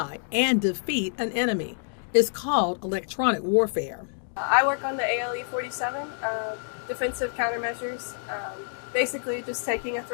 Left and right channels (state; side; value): silent; right; digital silence